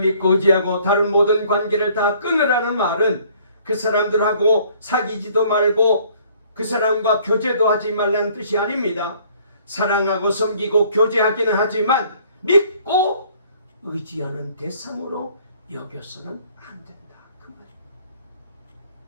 의지하고 다른 모든 관계를 다 끊으라는 말은 그 사람들하고 사귀지도 말고 그 사람과 교제도 하지 말라는 뜻이 아닙니다. 사랑하고 섬기고 교제하기는 하지만 믿고 의지하는 대상으로 여겨서는 안 된다. 그 말입니다.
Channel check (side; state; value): both; inverted; correlation -0.59